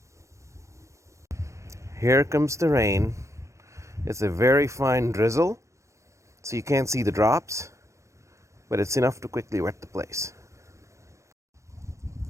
Here comes the rain. It's a very fine drizzle, so you can't see the drops, but it's enough to quickly wet the place.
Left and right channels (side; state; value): left; late; 0.15 ms